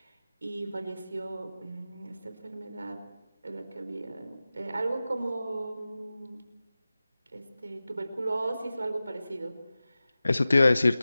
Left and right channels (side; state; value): both; inverted; correlation -0.96